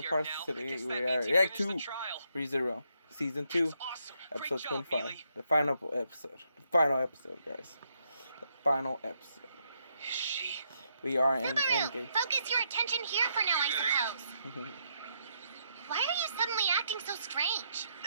parts today. We are React 2 ReZero, Season 2, Episode 25. The final episode. The final episode, guys. The final episode. We are in Endgame. Focus your attention here for now, I suppose. Why are you suddenly acting so strange?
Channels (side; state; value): both; inverted; correlation -0.76